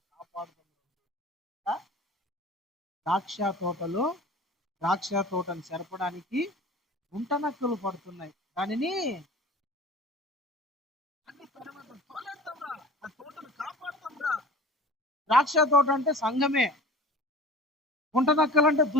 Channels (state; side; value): normal; both; correlation 0.40